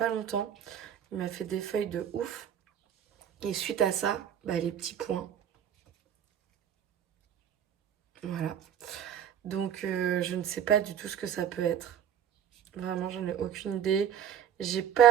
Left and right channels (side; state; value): left; quieter; 9.2 dB